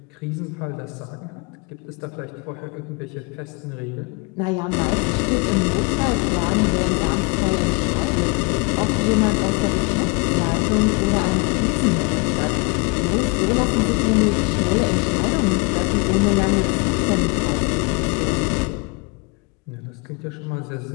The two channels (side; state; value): right; quieter; 30.0 dB